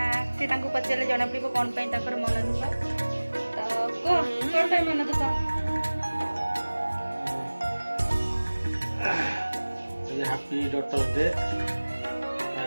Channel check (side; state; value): both; inverted; correlation -1.00